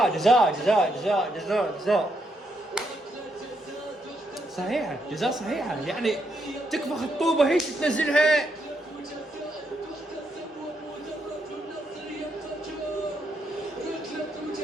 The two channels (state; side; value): normal; both; correlation 0.78